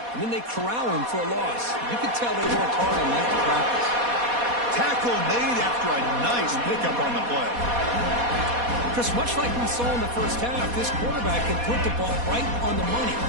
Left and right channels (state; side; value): late; left; 4.2 ms